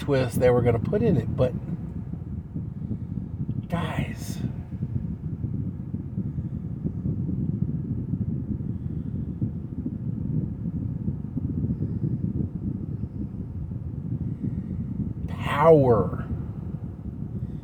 they were going to put in it. But guys, power,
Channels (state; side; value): identical; both; correlation 1.00